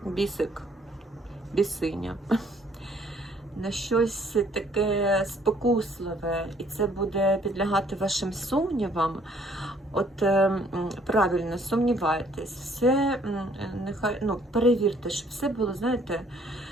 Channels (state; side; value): normal; both; correlation 0.62